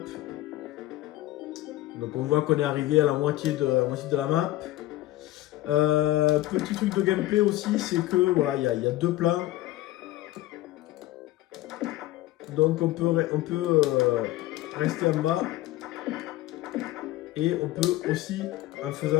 Donc on voit qu'on est arrivé à la moitié de la map. Petit truc de gameplay aussi, c'est que voilà, il y a deux plans. Donc on peut rester en bas. Et on peut aussi, en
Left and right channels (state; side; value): quieter; right; 16.3 dB